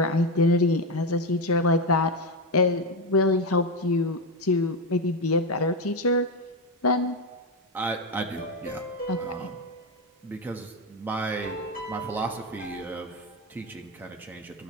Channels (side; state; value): both; normal; correlation 0.11